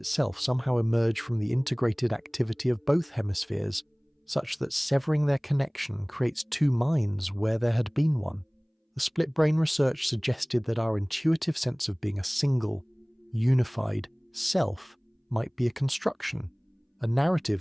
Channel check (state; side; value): identical; both; correlation 1.00